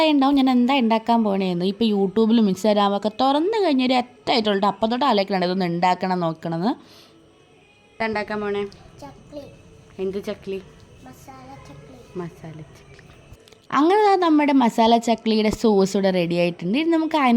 ഉണ്ടാവും ഞാൻ എന്താ ഉണ്ടാക്കാൻ പോകണേന്ന്. ഇപ്പോൾ യൂട്യൂബിലും ഇൻസ്റ്റാഗ്രാമൊക്കെ തുറന്നു കഴിഞ്ഞൊരു എത്തായിട്ടുള്ളത് അപ്പം തൊട്ട് ആലോചിക്കണം ഇതൊന്ന് ഉണ്ടാക്കണം നോക്കണമെന്ന്. ഉണ്ടാക്കാൻ പോണേ എന്ത് ചക്ലി? മസാല ചക്ലി. അങ്ങനെ നമ്മുടെ മസാല ചക്ലിയുടെ സോസ് ഇവിടെ റെഡി ആയിട്ടുണ്ട്. ഇനി നമുക്ക്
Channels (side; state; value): both; identical; correlation 1.00